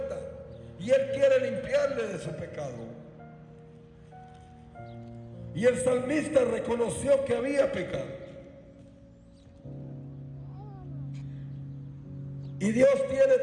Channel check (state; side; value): identical; both; correlation 1.00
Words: y Él quiere limpiarle de su pecado. Y el salmista reconoció que había pecado. Y Dios tiene